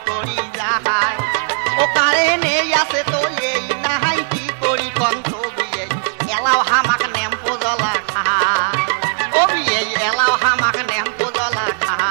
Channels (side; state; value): left; silent; digital silence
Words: করি যাহাই ও কারেন্ট আছে তো এই নাহাই কি করি কন্ত বিয়ে এলাও হামাক নেম্পো জ্বলা খায় ও বিয়ে এলাও হামাক নেম্পো জ্বলা